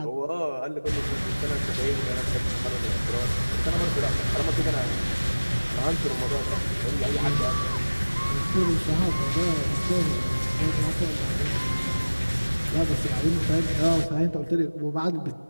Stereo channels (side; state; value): both; inverted; correlation -1.00